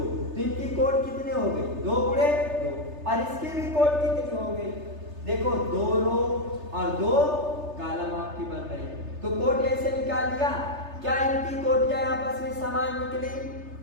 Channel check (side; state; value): left; late; 3.3 ms